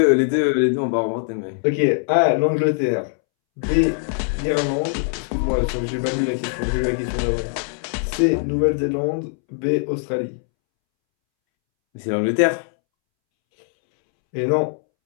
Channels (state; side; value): silent; right; 65 dB below the other